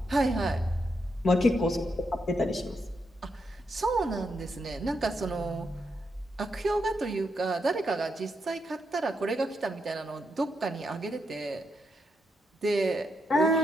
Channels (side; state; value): both; normal; correlation 0.82